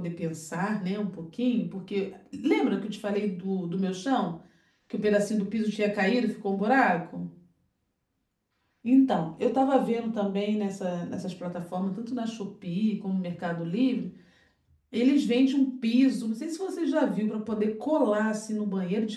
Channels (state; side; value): identical; both; correlation 1.00